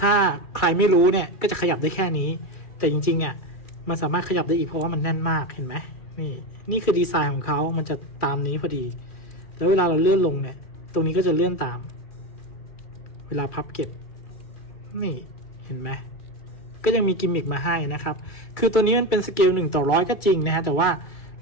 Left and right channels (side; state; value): right; late; 2.3 ms